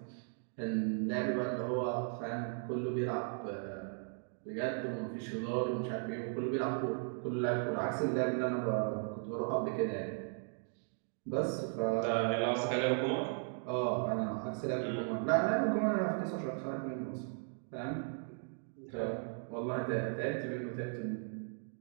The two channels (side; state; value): left; silent; 53 dB below the other